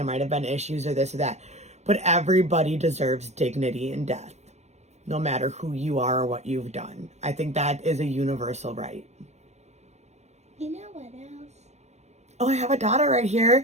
might have been issues or this or that. But everybody deserves dignity in death, no matter who you are or what you've done. I think that is a universal right. You know what else? Oh, I have a daughter right here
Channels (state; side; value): late; left; 0.32 ms